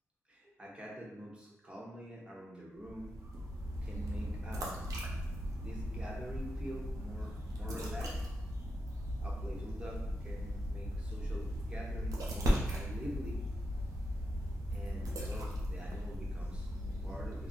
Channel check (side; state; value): both; normal; correlation 0.86